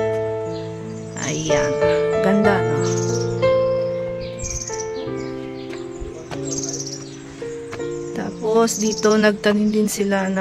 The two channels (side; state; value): both; identical; correlation 1.00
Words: Ayan. Ganda, no? Tapos dito nagtanim din sila